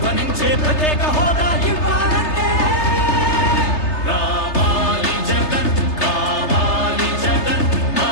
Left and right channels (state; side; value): late; right; 3.3 ms